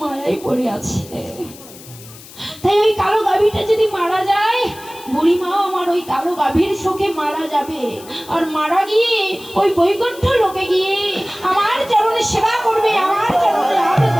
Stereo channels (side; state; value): left; noise; hiss, 19 dB below the sound